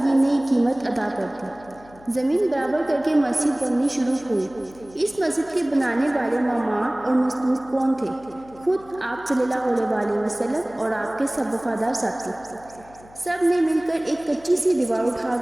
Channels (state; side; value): noise; left; hum, 24 dB below the sound